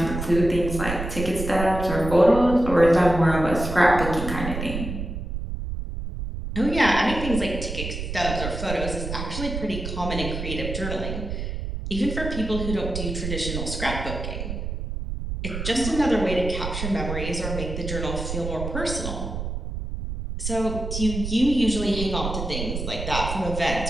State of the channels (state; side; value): noise; right; rumble, 5 dB below the sound